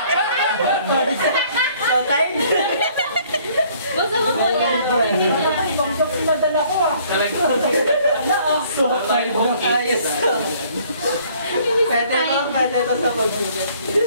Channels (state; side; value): inverted; both; correlation -0.59